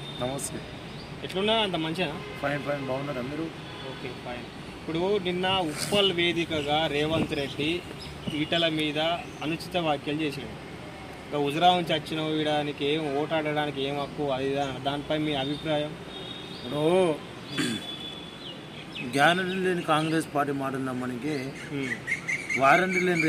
నమస్తే. ఎట్లున్నా అంత మంచిగా? ఫైన్ ఫైన్ బాగున్నారా మీరు? Okay fine. ఇప్పుడు నిన్న ఉప్పల్ వేదికగా రేవంత్ రెడ్డి ఈటల మీద అనుచిత వ్యాఖ్యలు చేసాడు. ఇంకా హుజురా నుంచి వచ్చిన వీడానికి ఏం ఓటాడడానికి ఏం హక్కు అది దానిపై మీ అభిప్రాయం? ఇప్పుడు గ్యారంటీ లేని కాంగ్రెస్ పార్టీ మాట నమ్మనికి, వారంటీ లేని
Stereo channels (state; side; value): identical; both; correlation 1.00